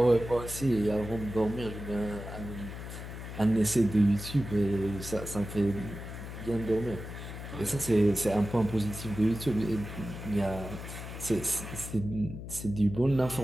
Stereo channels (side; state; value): left; noise; hum, 9 dB below the sound